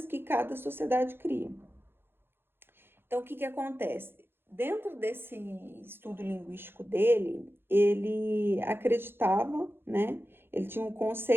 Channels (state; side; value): late; left; 0.11 ms